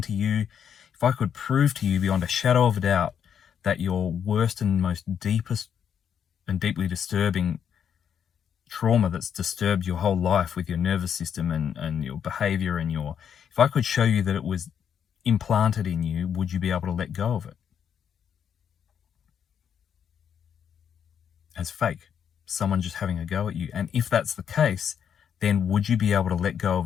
you, if I could prove to you beyond a shadow of a doubt that your worst and most deepest and deeply disturbing trauma that's disturbed your whole life with your nervous system and your behavior and if I could show you that it was implanted in you, would you be able to let go of it? As fake, someone just having a go at you. And if that's the case, then would you be able to let go of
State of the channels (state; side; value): quieter; right; 8.2 dB